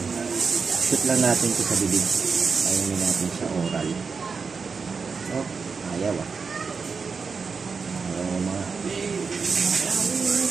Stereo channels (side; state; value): left; quieter; 5.2 dB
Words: Shoot lang natin ito sa bibig. Kainimin natin siya oral. Oh, ayaw ah. Ayaw mga.